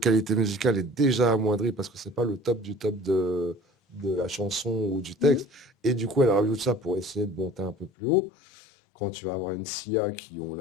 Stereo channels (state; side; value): drops out; right; at 7.9 s